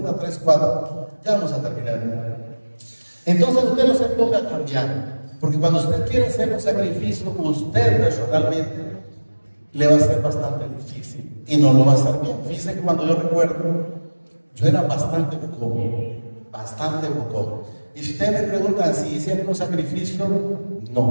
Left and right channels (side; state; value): both; inverted; correlation -1.00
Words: 3, 4, ya vamos a terminar. Entonces usted no se ponga a cambiar, porque cuando usted quiere hacer un sacrificio, usted personalmente le va a ser bastante difícil y no lo va a hacer bien. Fíjense que cuando yo recuerdo, yo era bastante bocón. Y si ustedes me preguntan si hice un sacrificio,